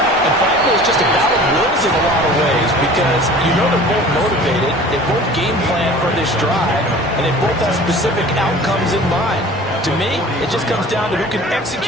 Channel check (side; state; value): both; normal; correlation 0.44